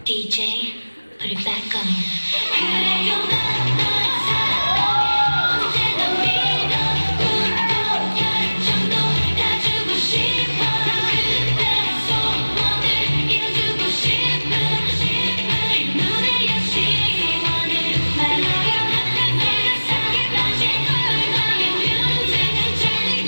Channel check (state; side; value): inverted; both; correlation -1.00